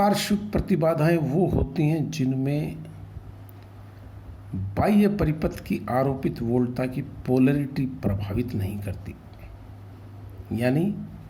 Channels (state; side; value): identical; both; correlation 1.00